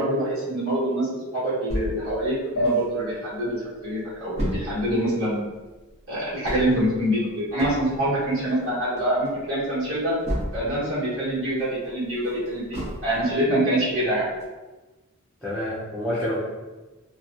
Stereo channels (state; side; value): normal; both; correlation 0.25